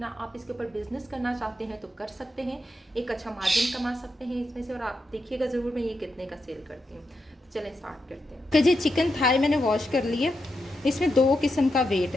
आप इसके ऊपर बिजनेस करना चाहते हैं तो कर सकते हैं, एक अच्छा मार्जिन कमा सकते हैं इसमें से। और आप देखिएगा ज़रूर मैं ये कितने का सेल करती हूँ। तो चलें स्टार्ट करते हैं। तो जी चिकन थाई मैंने वॉश कर लिया। इसमें 2 किस्म का वेट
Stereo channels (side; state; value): both; normal; correlation 0.85